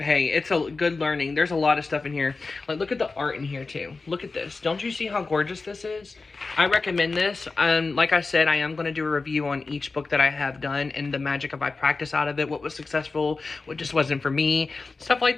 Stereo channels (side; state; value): right; quieter; 3.9 dB